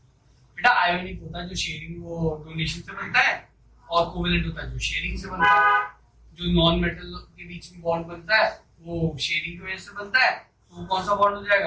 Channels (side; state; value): both; identical; correlation 1.00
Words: बेटा। आयोनिक होता है जो शेयरिंग वो डोनेशन से बनता है, और कोवेलेंट होता है जो शेयरिंग से बनता है। जो नॉन मेटल के बीच में बॉन्ड बनता है वो शेयरिंग की वजह से बनता है, तो वो कौन सा बॉन्ड हो